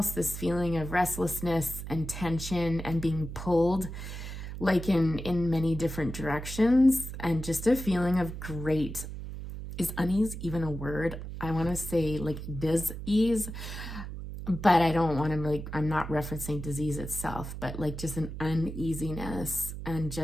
this feeling of restlessness and tension and being pulled like in many different directions, and just a feeling of great is unease even a word? I want to say like dis-ease, but I don't want to like, I'm not referencing disease itself, but like just an uneasiness and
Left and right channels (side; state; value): right; noise; hum, 8 dB below the sound